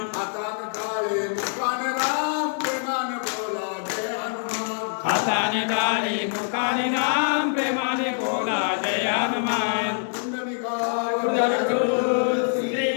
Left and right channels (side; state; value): right; silent; digital silence